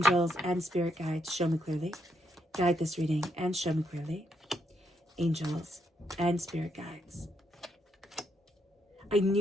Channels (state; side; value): normal; both; correlation 0.77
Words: and spirit guides, show me clearly. Guide this reading and show me clearly. Angels and spirit guides. I